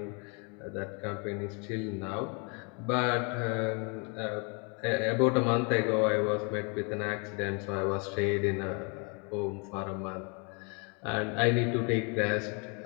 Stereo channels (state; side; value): quieter; right; 34.6 dB